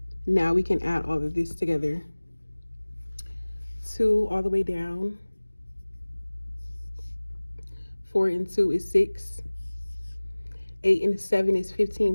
Now we can add all of this together. 2 all the way down. 4 and 2 is 6. 8 and 7 is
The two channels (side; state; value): both; inverted; correlation -1.00